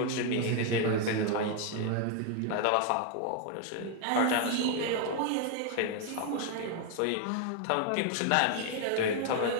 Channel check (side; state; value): both; different; correlation 0.00